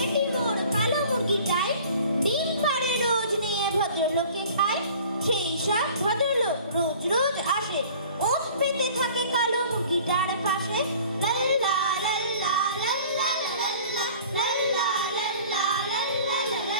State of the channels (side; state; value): both; inverted; correlation -0.47